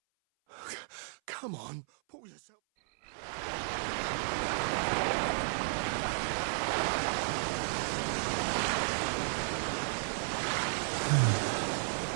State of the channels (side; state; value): left; silent; 55 dB below the other